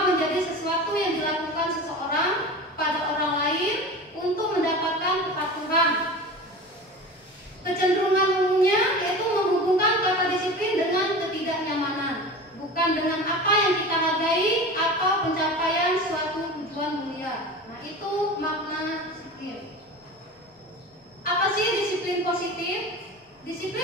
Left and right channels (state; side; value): normal; both; correlation 0.33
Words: menjadi sesuatu yang dilakukan seseorang pada orang lain untuk mendapatkan kepatuhan. Kecenderungan umumnya yaitu menghubungkan kata disiplin dengan ketidaknyamanan, bukan dengan apa yang kita hargai atau pencapaian suatu tujuan mulia. Nah, itu makna disiplin. Apa sih disiplin positif?